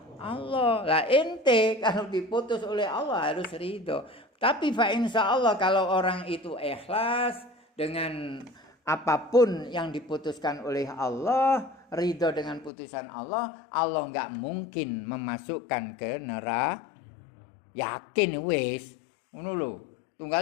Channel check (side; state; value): right; drops out; at 12.7 s